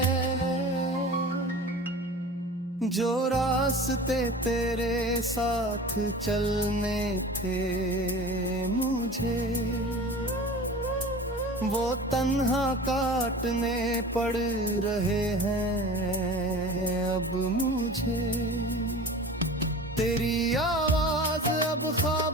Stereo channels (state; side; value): normal; both; correlation 0.37